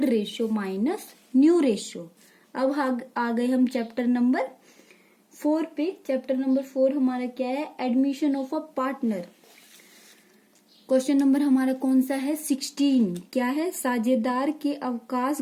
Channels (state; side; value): identical; both; correlation 1.00